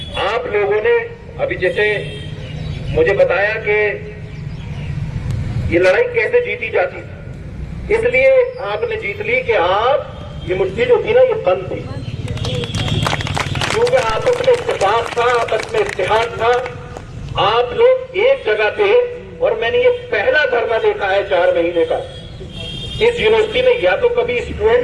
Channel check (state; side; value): identical; both; correlation 1.00